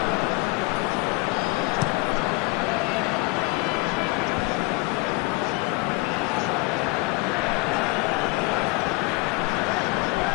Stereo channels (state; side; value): quieter; right; 24.9 dB